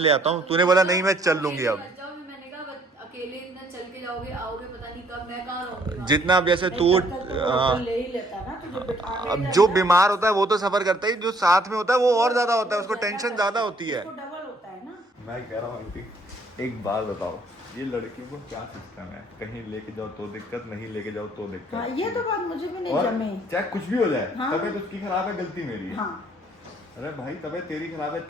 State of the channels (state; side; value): normal; both; correlation 0.63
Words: आता हूँ, तूने बोला नहीं मैं चल लूंगी। अब मैंने कहा अकेले इतना चल के जाओगे, आओगे पता नहीं कब, मैं कहाँ रहूंगी। जितना अब जैसे तू ले ही लेता ना तुझे बिठा के। अब जो बीमार होता है वो तो सफर करता है, जो साथ में होता है वो और ज्यादा होता है, उसको टेंशन ज्यादा होती है। डबल होता है ना। मैं कह रहा हूँ आंटी, एक बात बताओ, ये लड़कियों को क्या सिस्टम है, कहीं लेके जाओ तो दिक्कत, नहीं लेके जाओ तो दिक्कत। हाँ, ये तो बात मुझे भी नहीं और जमे। चाहे कुछ भी हो जाए, हाँ। तबीयत उसकी खराब है, गलती मेरी है। हाँ। अरे भाई तबीयत तेरी खराब है,